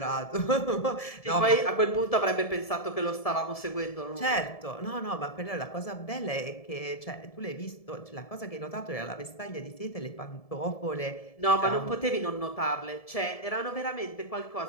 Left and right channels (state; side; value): late; right; 1.7 ms